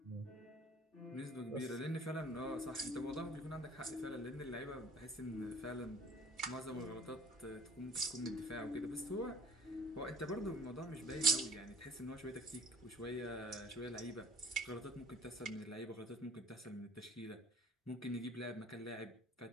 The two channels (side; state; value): both; normal; correlation 0.48